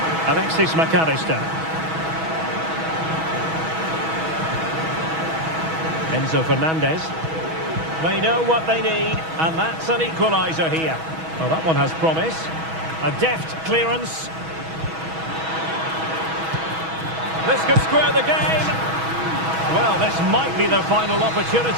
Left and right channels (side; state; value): left; late; 6.2 ms